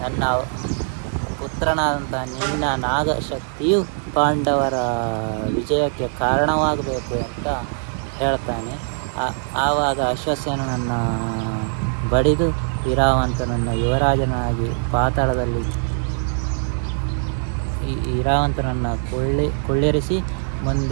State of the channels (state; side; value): silent; left; 63 dB below the other